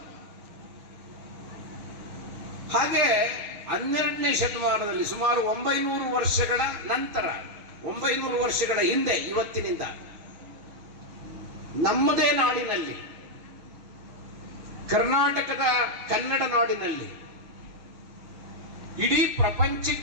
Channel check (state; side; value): late; left; 6.4 ms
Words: ಹಾಗೆ 12ನೇ ಶತಮಾನದಲ್ಲಿ ಸುಮಾರು 900 ವರ್ಷಗಳ ನಂತರ, 900 ವರ್ಷಗಳ ಹಿಂದೆ, ಇವತ್ತಿನಿಂದ ನಮ್ಮದೇ ನಾಡಿನಲ್ಲಿ, ಕರ್ನಾಟಕದ ಕನ್ನಡ ನಾಡಿನಲ್ಲಿ, ಇಡೀ